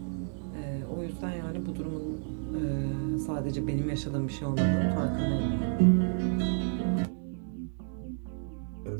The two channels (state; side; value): silent; left; digital silence